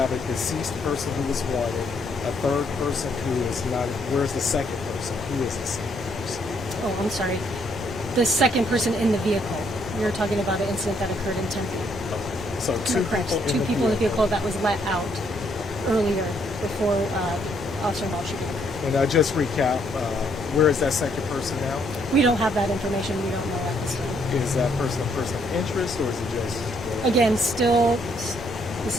have a deceased person who was wanted, a third person who is not. Where's the second person? Who is the second person? Oh, I'm sorry. The second person in the vehicle. We were talking about an incident that occurred in Tempe. So two Correct. people In the vehicle that was let out earlier before officer-involved shooting. And just recap, where is that second person now? We don't have that information. We don't know at this time. Is that person a person of interest, or is it just? Again, this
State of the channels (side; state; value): both; normal; correlation 0.71